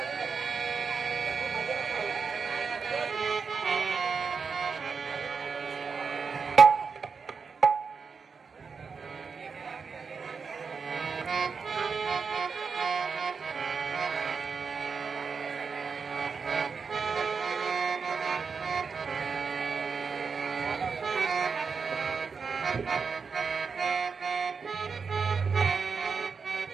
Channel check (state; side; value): quieter; left; 5.4 dB